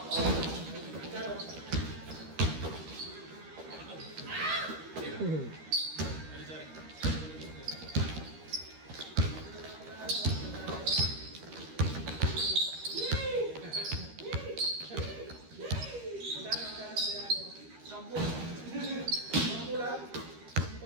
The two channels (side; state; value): left; late; 13 ms